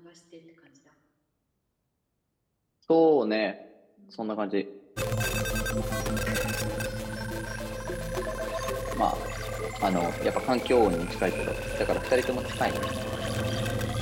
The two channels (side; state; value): both; identical; correlation 1.00